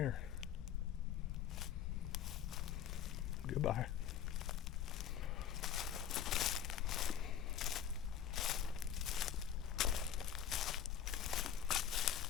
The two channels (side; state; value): right; quieter; 9.5 dB